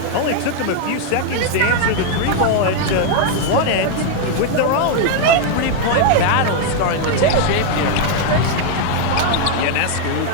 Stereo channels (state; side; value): different; both; correlation 0.00